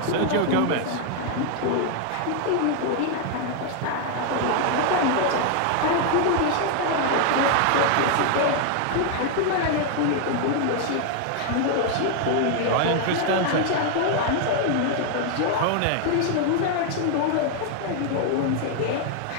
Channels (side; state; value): both; different; correlation 0.00